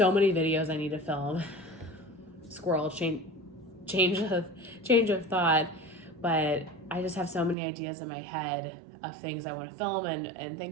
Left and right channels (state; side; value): drops out; left; at 7.6 s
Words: many videos I need to film. Squirrel change of thought, but I just have so many ideas in my head of things I want to film and